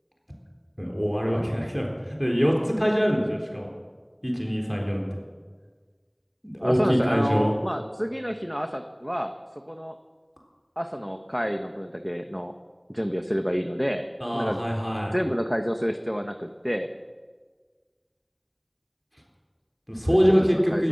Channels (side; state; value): both; identical; correlation 1.00